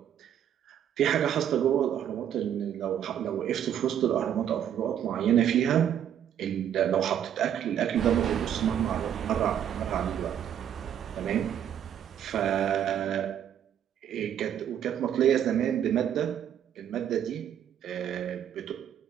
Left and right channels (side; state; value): left; quieter; 9.7 dB